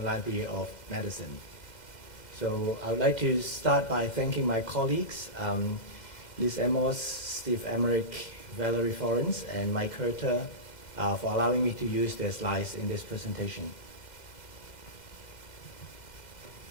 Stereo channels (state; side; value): late; right; 2.0 ms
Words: Library of Medicine. So I would like to start by thanking my colleagues, Liz Amos, Steve Emmerich, Valerie Florence, and Mike Herter for allowing me to use their slides in this presentation.